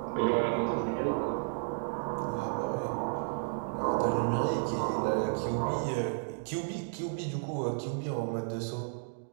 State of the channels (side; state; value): left; silent; digital silence